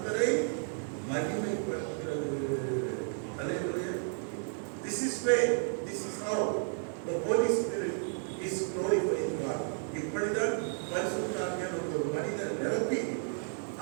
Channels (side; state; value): left; silent; 56 dB below the other